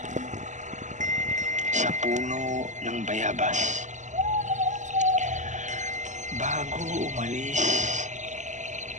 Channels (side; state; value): left; late; 0.35 ms